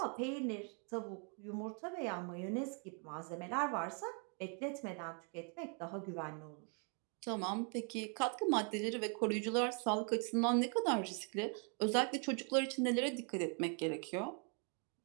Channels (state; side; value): quieter; left; 39.2 dB